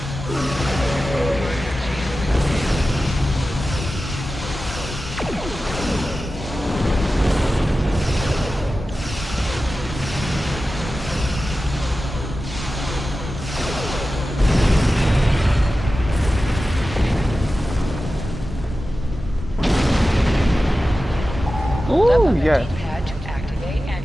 Ooh, yes. D-pad to activate and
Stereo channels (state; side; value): normal; both; correlation 0.94